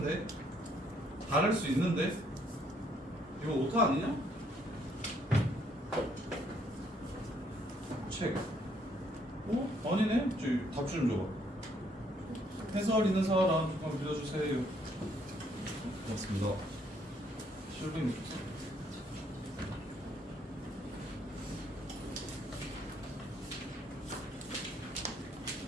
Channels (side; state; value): both; normal; correlation 0.68